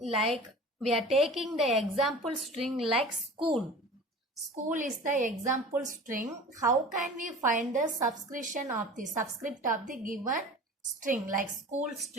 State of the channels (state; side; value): normal; both; correlation 0.39